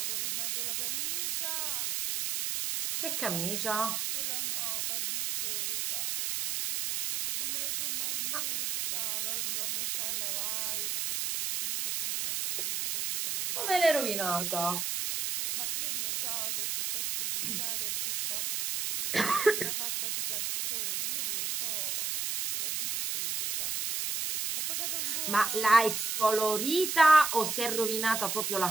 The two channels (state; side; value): noise; right; hiss, 1 dB below the sound